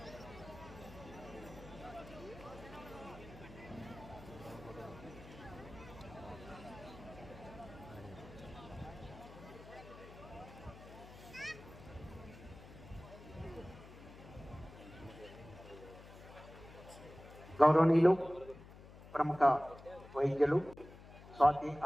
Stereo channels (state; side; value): noise; left; hum, 17 dB below the sound